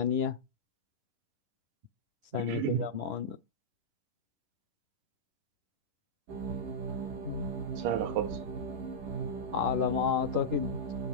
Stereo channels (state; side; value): late; left; 10 ms